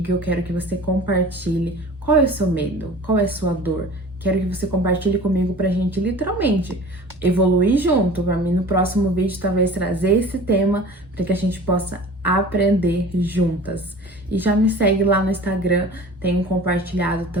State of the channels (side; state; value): both; normal; correlation 0.42